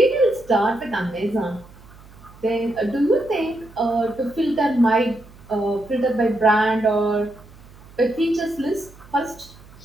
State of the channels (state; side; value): noise; right; hum, 22 dB below the sound